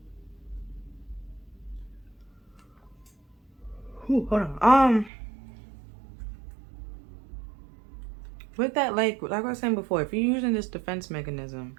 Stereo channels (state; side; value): drops out; left; at 5.1 s